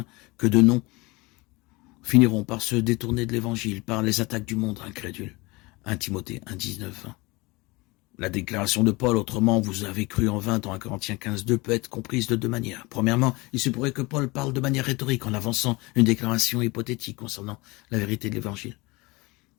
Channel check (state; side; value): quieter; right; 23.9 dB